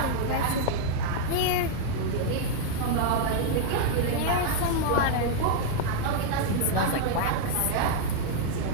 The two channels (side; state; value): both; different; correlation -0.01